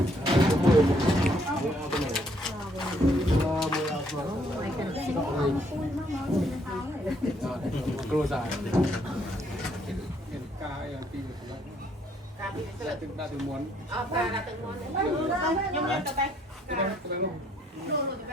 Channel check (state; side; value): normal; both; correlation 0.68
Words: គ្រូសាកាយពីទឹកដាក់ទៅមុន